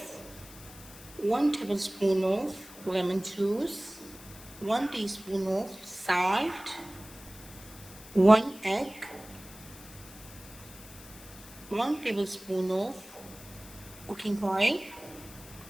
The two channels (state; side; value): noise; left; hiss, 18 dB below the sound